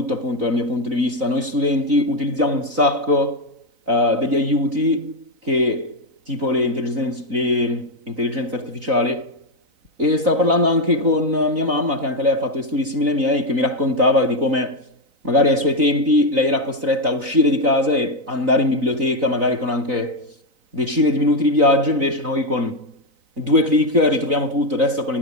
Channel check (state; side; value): late; left; 3.9 ms